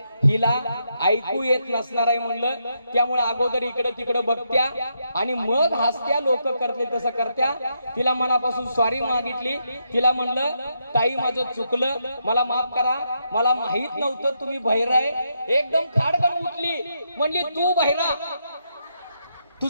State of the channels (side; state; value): both; inverted; correlation -0.80